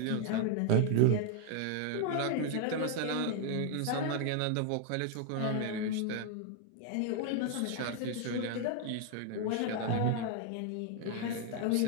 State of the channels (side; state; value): both; different; correlation 0.00